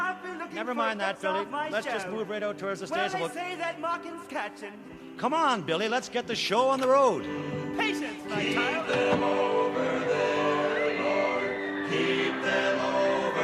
Never mind that, Billy. Let's just move right out towards the stage. Well, they say that mocking's catching. Come on, Billy. Let's get the show on the road. Patience, my child. Keep them over there, Lord. Keep them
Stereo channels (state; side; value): identical; both; correlation 1.00